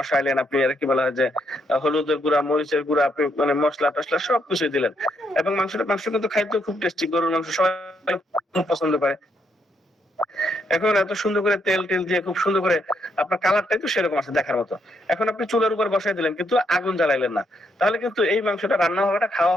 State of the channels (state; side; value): normal; both; correlation 0.76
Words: আপনি আর কি বলা হয় যে হলুদের গুঁড়া, মরিচের গুঁড়া, আপনি মানে মশলা টসলা সবকিছু দিলেন, এবং মাংস কিন্তু খাইতে খুব টেস্টি, গরুর মাংস সবাই খুব পছন্দ করে। এখন এত সুন্দর করে তেল দিয়ে খুব সুন্দর করে আপনার কালারটাই তো সেরকম আছে দেখার মতো। এখন আপনি চুলার উপর বসাই দিলেন কিন্তু আগুন জ্বালাইলেন না, তাহলে কিন্তু এই মাংসটা রান্না হবে না, খাওয়া